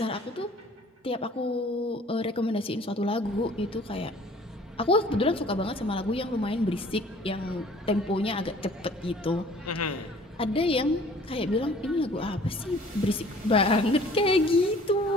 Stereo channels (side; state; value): both; normal; correlation 0.52